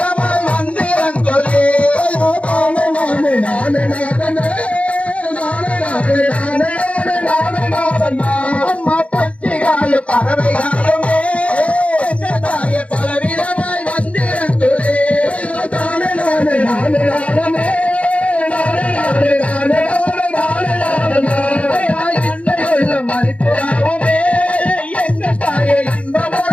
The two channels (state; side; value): late; right; 0.063 ms